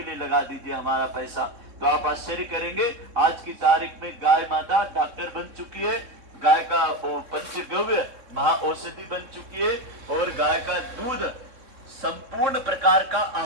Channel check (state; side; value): late; left; 3.6 ms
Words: लिए लगा दीजिए हमारा पैसा। तो आप आश्चर्य करेंगे, आज की तारीख में गाय माता डॉक्टर बन चुकी है, गाय का पंचगव्य महा औषधि बन चुकी है और गाय का दूध संपूर्ण प्रकार का